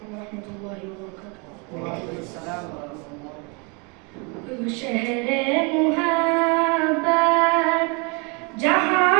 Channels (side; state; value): left; quieter; 32.2 dB